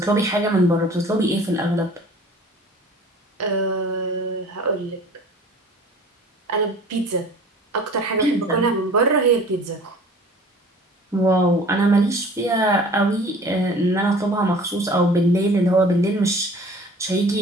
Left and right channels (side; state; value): both; normal; correlation 0.46